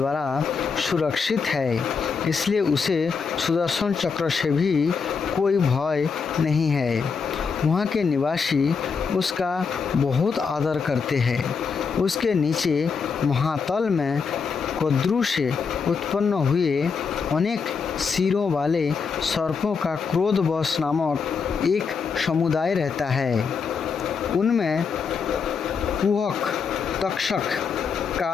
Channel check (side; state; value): right; quieter; 5.6 dB